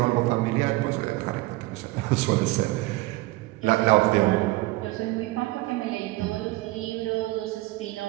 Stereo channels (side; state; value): left; quieter; 20.1 dB